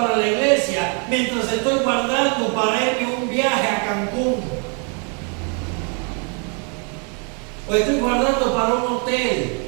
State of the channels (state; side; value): quieter; left; 37.9 dB